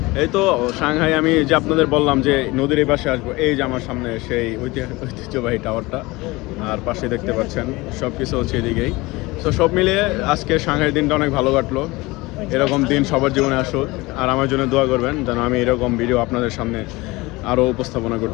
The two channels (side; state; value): right; quieter; 22.0 dB